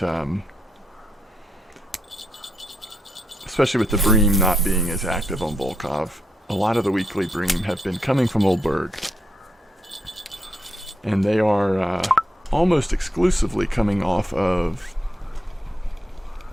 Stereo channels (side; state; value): both; normal; correlation 0.80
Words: especially with the Bream not being as active on Volkov, a lot of the weekly Bream have been coming from Old Burg. And they are almost exclusively coming off of